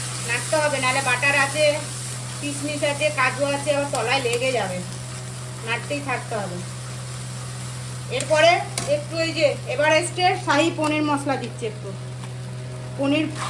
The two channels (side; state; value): both; identical; correlation 1.00